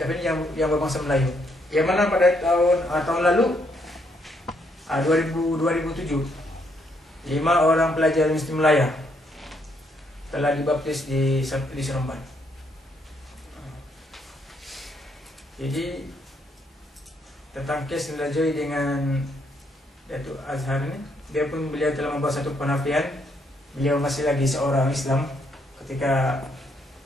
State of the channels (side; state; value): both; normal; correlation 0.73